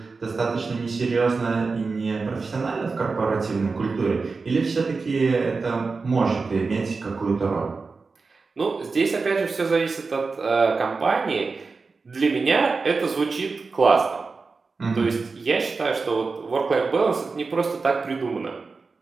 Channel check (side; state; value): left; quieter; 4.3 dB